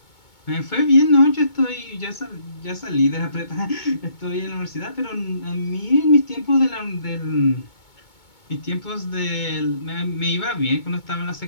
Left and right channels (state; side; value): late; right; 2.2 ms